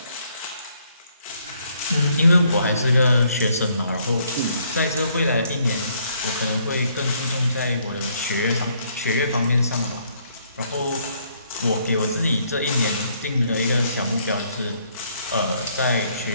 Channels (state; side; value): inverted; both; correlation -0.68